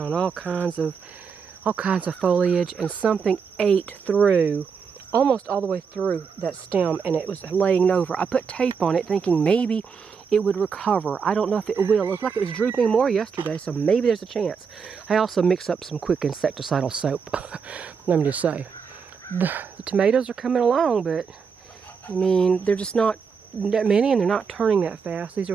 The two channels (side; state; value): left; quieter; 6.1 dB